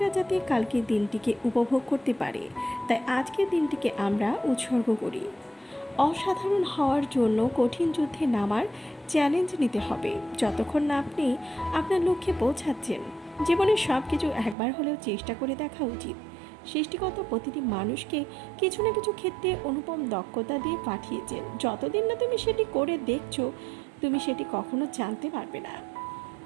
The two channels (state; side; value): drops out; left; at 14.6 s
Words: যাতে কালকের দিনটিকে উপভোগ করতে পারে, তাই আজকের দিনটিকে আমরা উৎসর্গ করি। অসাধারণ হওয়ার জন্য কঠিন যুদ্ধে নামার চ্যালেঞ্জ নিতে হবে। যতক্ষণ না আপনি আপনার লক্ষ্যে পৌঁছাচ্ছেন, জীবনে সব কিছু একবার হলেও চেষ্টা করে দেখা উচিত। সৃষ্টিকর্তা প্রতিটি মানুষকে কিছু না কিছু ক্ষেত্রে অনুপম দক্ষতা দিয়ে পাঠিয়েছেন। যতদিন না তুমি সেটি করে দেখছো, তুমি সেটি কখনো জানতে পারবে না।